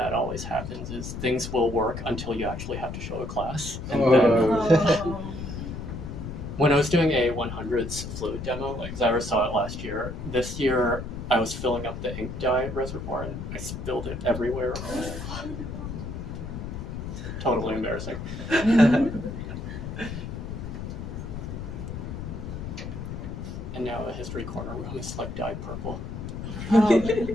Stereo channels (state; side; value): noise; left; rumble, 7 dB below the sound